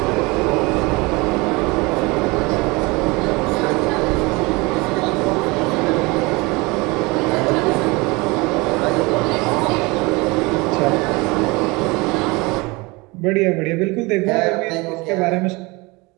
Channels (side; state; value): left; quieter; 25.0 dB